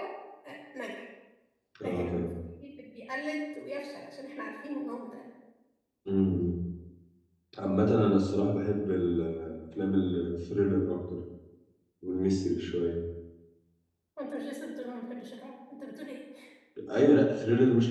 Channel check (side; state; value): both; identical; correlation 1.00